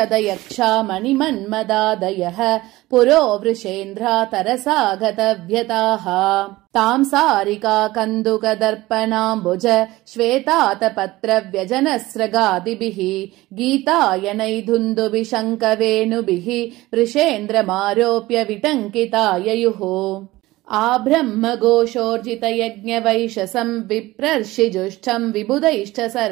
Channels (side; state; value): left; quieter; 18.5 dB